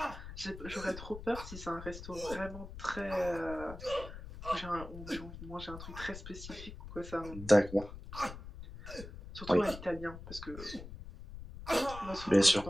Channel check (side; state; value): left; noise; rumble, 12 dB below the sound